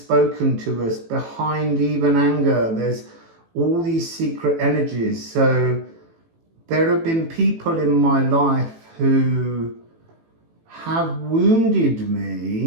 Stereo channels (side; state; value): left; late; 18 ms